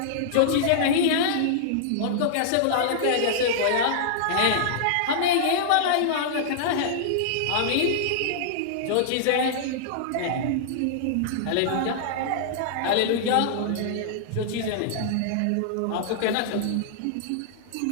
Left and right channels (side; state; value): both; different; correlation -0.01